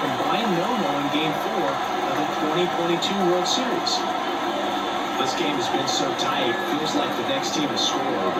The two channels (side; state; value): both; identical; correlation 1.00